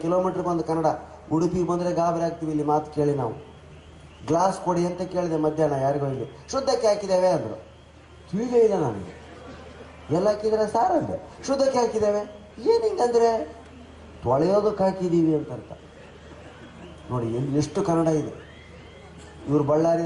ಕಿಲೋಮೀಟ್ರಿಗೆ ಒಂದು ಕನ್ನಡ. ಉಡುಪಿಗೆ ಬಂದರೆ ಗಾಬರಿ ಆಗ್ತೀವಿ ಇಲ್ಲಿ ಮಾತು ಕೇಳಿ. ನಾವು ಗ್ಲಾಸ್ ಕೊಡಿ ಅಂತ ಕೇಳಿದೆ ಮಧ್ಯಾಹ್ನ ಯಾರಿಗೋ, ಇಲ್ಲಿ ಶುದ್ಧಕ್ಕೆ ಹಾಕಿದ್ದೇವೆ ಅಂದರು. ತಿಳಿದೇ ಇಲ್ಲ ನನಗೆ. ಎಲ್ಲ ಹಾಕಿದರೆ ಸಾರ್ ಅಂದೆ. ಶುದ್ಧಕ್ಕೆ ಹಾಕಿದ್ದೇವೆ ಏನು ಹಿಂಗಂದರೆ ತೊಳೆಯೋದಕ್ಕೆ ಹಾಕಿದ್ದೀವಿ ಅಂತ ಅರ್ಥ. ನೋಡಿ ಎಷ್ಟು ಕನ್ನಡ ಇದೆ. ಇವ್ರು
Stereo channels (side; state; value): both; identical; correlation 1.00